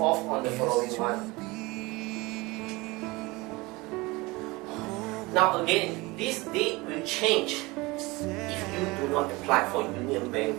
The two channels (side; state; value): left; quieter; 23.2 dB